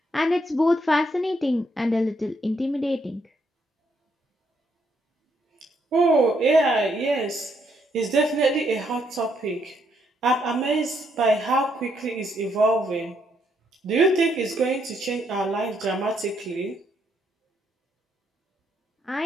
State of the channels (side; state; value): both; normal; correlation 0.74